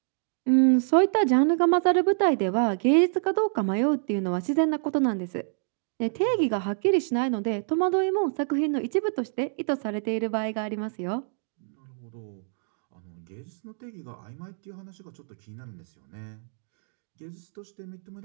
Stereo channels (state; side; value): silent; left; digital silence